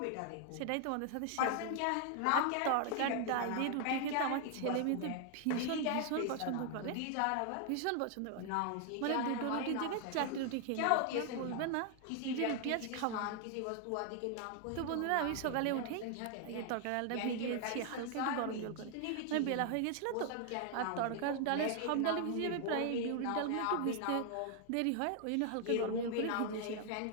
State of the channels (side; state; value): both; different; correlation 0.00